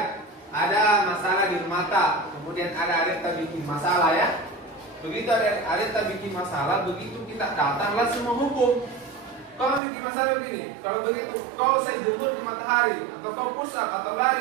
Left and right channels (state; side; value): drops out; left; at 9.8 s